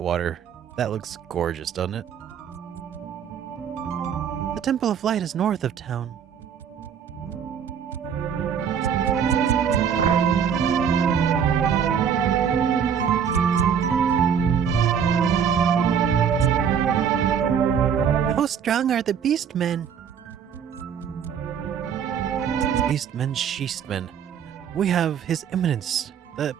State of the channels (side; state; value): left; quieter; 7.7 dB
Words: water. That looks gorgeous, doesn't it? The Temple of Light is north of town. How strong are the beastmen? Beastmen, Sheastmen. We have His Eminence, the